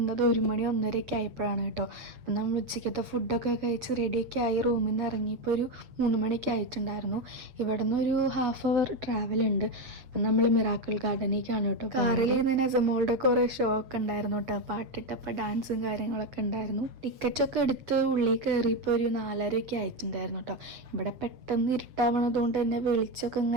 1 മണി 1:30 ആയപ്പോഴാണ് കേട്ടോ. അപ്പം നമ്മൾ ഉച്ചയ്ക്കത്തെ ഫുഡൊക്കെ കഴിച്ച് റെഡിയൊക്കെ ആയി റൂമിൽ നിന്ന് ഇറങ്ങിയപ്പോൾ ഒരു 3 മണിക്ക് ആയിട്ടുണ്ടായിരുന്നു. ഇവിടെ നിന്ന് ഒരു ½ അവർ ട്രാവൽ ഉണ്ട്. അപ്പം നമ്മൾ മിറാക്കിൾ ഗാർഡനിലേക്കാണ് കേട്ടോ. കാറിൽ നിന്ന് നസമോളുടെ കുറേ ഷോ ഒക്കെ ഉണ്ടായിരുന്നു കേട്ടോ. പാട്ടിട്ടപ്പോൾ ഡാൻസും കാര്യങ്ങളൊക്കെ ഉണ്ടായിരുന്നു. ടിക്കറ്റൊക്കെ എടുത്ത് ഉള്ളിൽ കയറിയപ്പോൾ ഒരു 4:30 ആയിട്ടുണ്ടായിരുന്നു കേട്ടോ. ഇവിടെ പെട്ടെന്ന് ഇരുട്ടാവണതുകൊണ്ട് തന്നെ വെളിച്ചമൊക്കെ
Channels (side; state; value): left; late; 7.9 ms